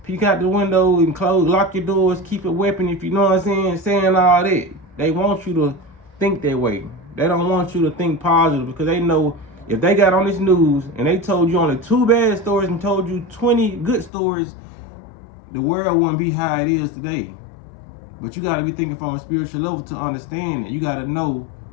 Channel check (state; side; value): drops out; right; at 14.1 s